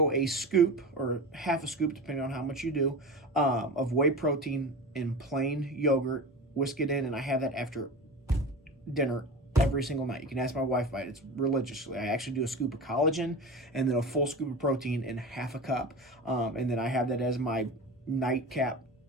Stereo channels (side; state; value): both; normal; correlation 0.30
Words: a scoop or half a scoop, depending on how much you do, of whey protein in plain yogurt, whisk it in, and I have that after dinner every single night. You can ask my wife about it. It's religiously. I actually do a scoop of collagen and then a full scoop of protein in half a cup. And then I have that as my nightcap